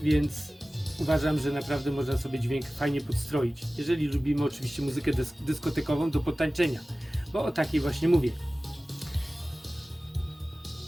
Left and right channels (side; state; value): both; normal; correlation 0.97